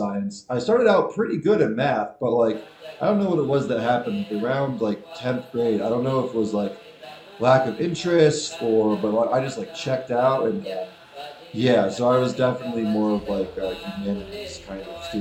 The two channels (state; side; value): identical; both; correlation 1.00